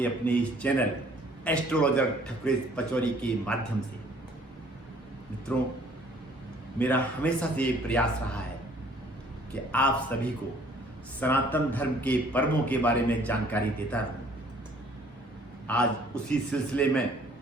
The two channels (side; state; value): both; normal; correlation 0.57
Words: अपने इस चैनल एस्ट्रोलॉजर ठकुरीत पचौरी के माध्यम से। मित्रों, मेरा हमेशा से ये प्रयास रहा है कि आप सभी को सनातन धर्म के पर्वों के बारे में जानकारी देता रहूँ। आज उसी सिलसिले में